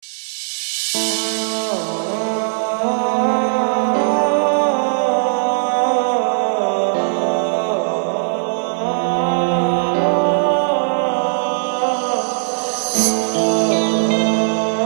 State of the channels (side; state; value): left; silent; digital silence